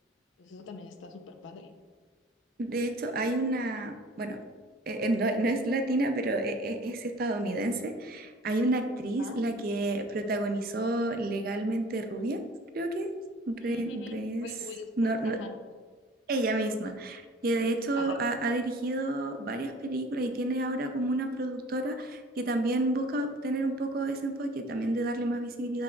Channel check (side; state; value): both; normal; correlation 0.49